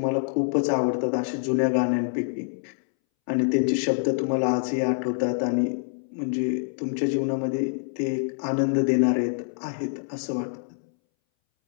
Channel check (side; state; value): right; silent; 61 dB below the other